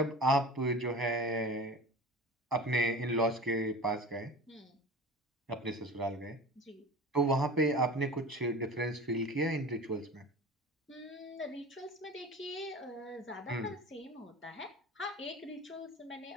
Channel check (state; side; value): normal; both; correlation 0.35